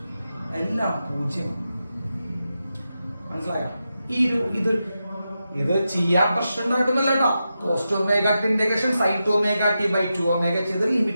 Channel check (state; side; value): inverted; both; correlation -0.89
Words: എല്ലാം 0. മനസ്സിലായോ? ഇത് ചെയ്യാൻ പ്രശ്നം ഉണ്ടായിട്ടൊന്നുമല്ല കേട്ടോ. cos 2 ωt integration sin 2 ωt/2ω ചെയ്ത്